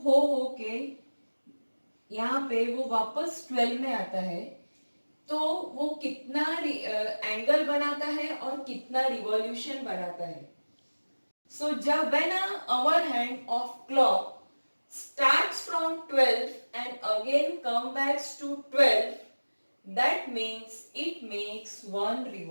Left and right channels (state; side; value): inverted; both; correlation -1.00